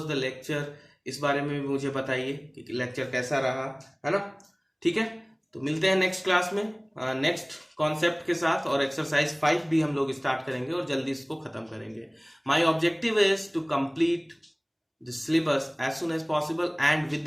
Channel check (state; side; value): identical; both; correlation 1.00